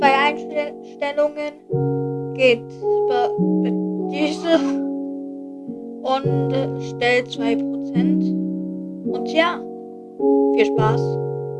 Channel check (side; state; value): both; identical; correlation 1.00